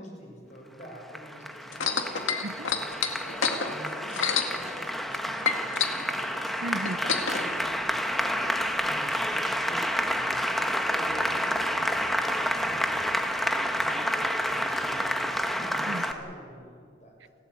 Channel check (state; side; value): normal; both; correlation 0.66